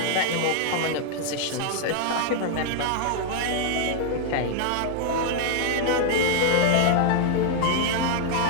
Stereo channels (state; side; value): different; both; correlation 0.00